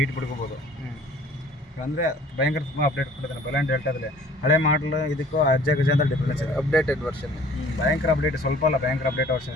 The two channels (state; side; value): normal; both; correlation 0.52